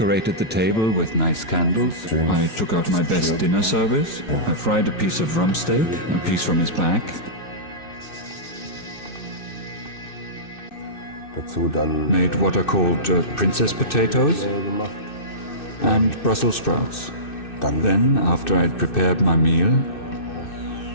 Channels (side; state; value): right; late; 2.6 ms